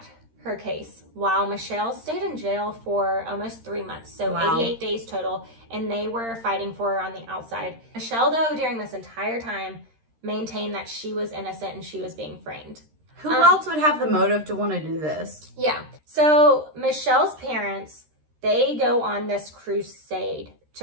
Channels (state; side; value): late; left; 13 ms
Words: her case while Michelle stayed in jail for almost 3 months. So 88 days total. And they were fighting for her on the outside. Michelle, though, during this entire time, maintained that she was innocent and she was being framed. Who else would have the motive to want to do this? Yeah. So Michelle's parents, they go on this crusade